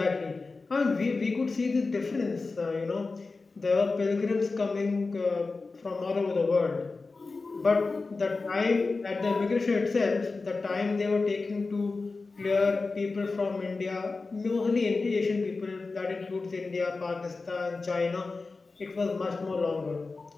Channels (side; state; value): right; quieter; 3.9 dB